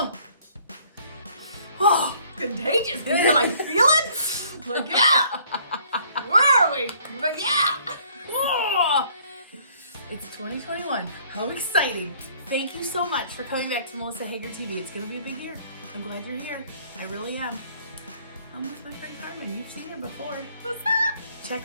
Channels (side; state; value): both; inverted; correlation -0.60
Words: Oh, contagious. Can you like feel it? Like, yeah! Where are we? Like, yeah! Oh. It's 2021. How exciting. Thank you so much for coming back to Melissa Hager TV. It's going to be a big year. I'm glad you're here. I really am. I'm with my friend Carmen. You've seen her before. What's up? Check